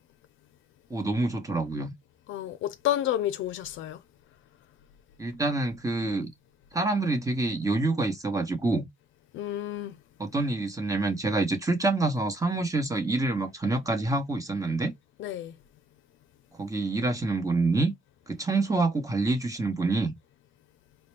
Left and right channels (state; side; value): normal; both; correlation 0.66